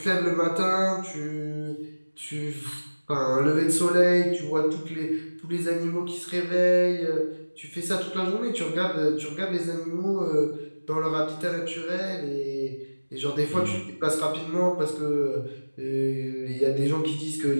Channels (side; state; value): both; inverted; correlation -1.00